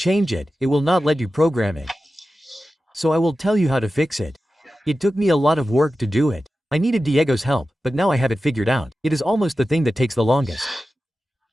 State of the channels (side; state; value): both; normal; correlation 0.94